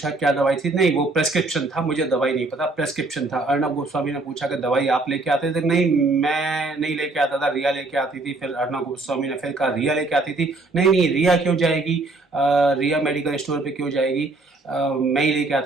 क्या दवाई थी, नहीं वो प्रेस्क्रिप्शन था, मुझे दवाई नहीं पता, प्रेस्क्रिप्शन था। अर्णव गोस्वामी ने पूछा कि दवाई आप लेके आते थे, नहीं मैं नहीं लेके आता था, रिया लेके आती थी। फिर अर्णव गोस्वामी ने फिर कहा रिया लेके आती थी, नहीं नहीं रिया क्यों जाएगी, रिया मेडिकल स्टोर पे क्यों जाएगी, मैं ही लेके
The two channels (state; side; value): quieter; left; 3.2 dB